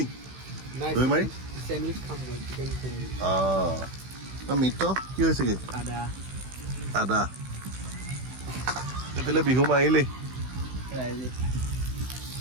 দৈ মাৰি মিত্ৰ কি হৈছেগে? আদা। এইফালে বিহু মাৰিলেই।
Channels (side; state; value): left; late; 16 ms